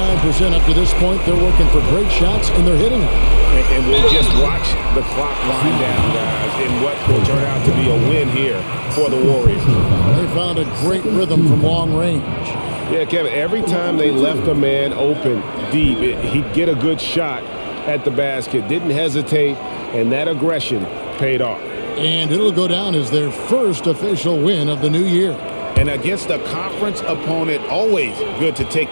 up to this point. They're working for great shots, and they're hitting them. And we'll just watch the clock wind down, guys, in what will turn out to be a win here for the Warriors. They found a great rhythm from long range. Yeah, Kevin, every time they left a man open deep, he'd get a good shot at the basket. Didn't hesitate, and that aggression paid off. And it'll go down as their first official win of the new year. And against a conference opponent, always good to take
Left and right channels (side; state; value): both; inverted; correlation -1.00